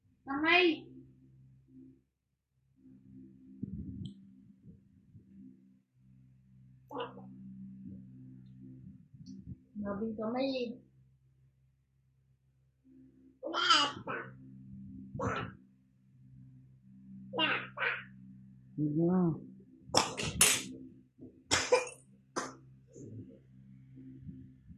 Kamay! Nabing kamay eh. Yeah.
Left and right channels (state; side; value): identical; both; correlation 1.00